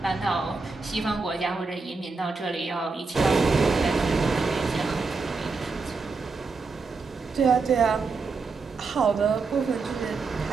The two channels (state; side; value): quieter; left; 4.3 dB